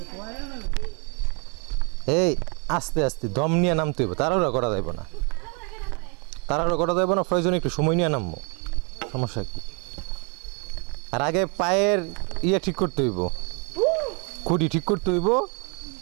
এই আস্তে আস্তে দম নিয়ে নামতে হইব, তাড়াহুড়া করা যাইব না। প্রয়োজনে একটু সময় নিয়ে নামবো, সমস্যা কি? আর আগে পায়ের ঠিক করতে হইব, খুঁটি ঠিক করতে হইব,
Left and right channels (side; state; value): left; quieter; 34.8 dB